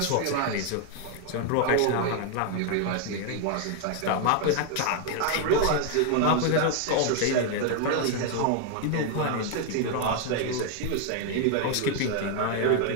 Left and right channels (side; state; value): both; different; correlation 0.00